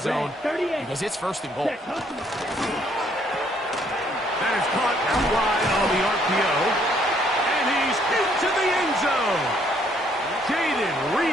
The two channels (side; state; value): both; normal; correlation 0.67